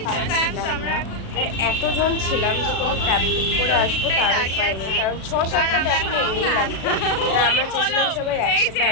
না। আর এতজন ছিলাম যে কোনো ক্যাব বুক করে আসবো তার হয়নি, কারণ 6-7 আমরা চেয়েছিলাম সবাই একসাথে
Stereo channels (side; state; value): right; late; 36 ms